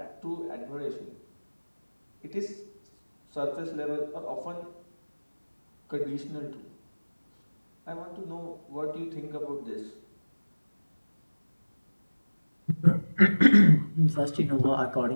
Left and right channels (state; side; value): inverted; both; correlation -1.00